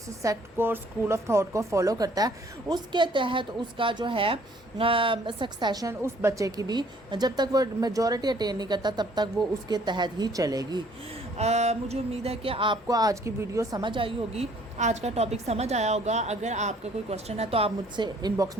सेक्ट को स्कूल ऑफ थॉट को फॉलो करता है उसके तहत उसका जो है सक्सेशन उस बच्चे की भी जब तक वो मेजॉरिटी अटेन नहीं करता तब तक वो उसके तहत ही चलेगी। मुझे उम्मीद है कि आपको आज की वीडियो समझ आई होगी, आज का टॉपिक समझ आया होगा। अगर आपका कोई क्वेश्चन है तो आप मुझसे इनबॉक्स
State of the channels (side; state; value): both; normal; correlation 0.60